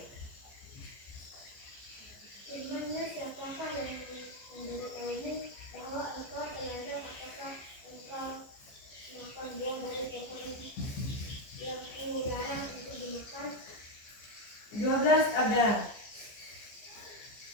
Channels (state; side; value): late; right; 15 ms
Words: Firman-Nya, siapakah yang memberitahumu bahwa engkau telanjang, apakah engkau makan buah dari pohon yang aku larang untuk dimakan? 12, Abdar.